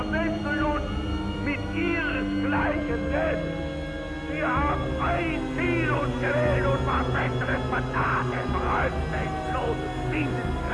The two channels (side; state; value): both; identical; correlation 1.00